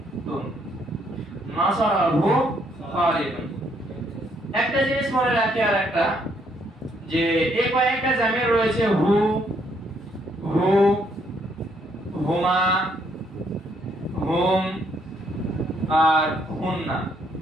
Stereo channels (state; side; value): normal; both; correlation 0.70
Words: নাসারা হু খালিদুন। একটা জিনিস মনে রাখি, আর একটা, যে এই কয়েকটা জামির রয়েছে, হু, হু, হুমা, হুম আর হুন্না,